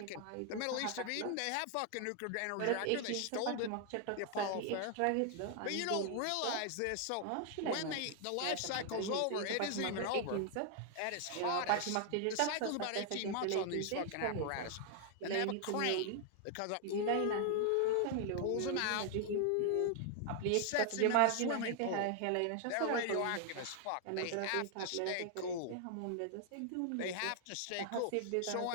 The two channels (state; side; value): different; both; correlation 0.00